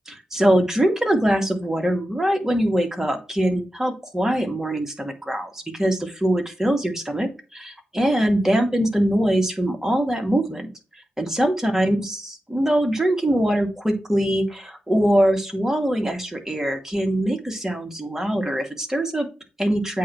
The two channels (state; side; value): normal; both; correlation 0.92